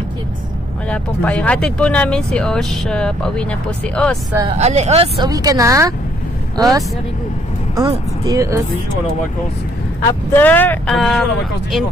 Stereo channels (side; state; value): both; normal; correlation 0.68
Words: Wala pong payong. Hatid po namin si Osh. Pauwi na po si Os. Ale, Os, uwi ka na? Os? Very good. Oh, Os. After, in